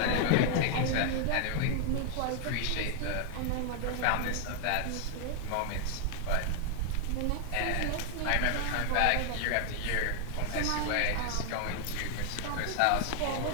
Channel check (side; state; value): both; different; correlation 0.00